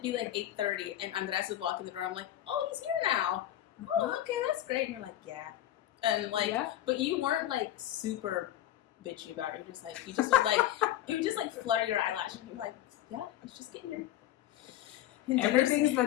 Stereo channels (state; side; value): quieter; right; 13.1 dB